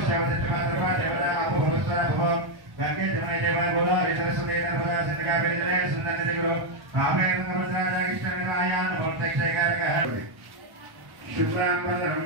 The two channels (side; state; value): left; late; 1.1 ms